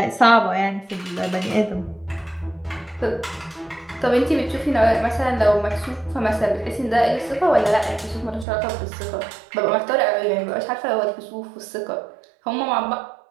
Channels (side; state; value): left; drops out; at 8.5 s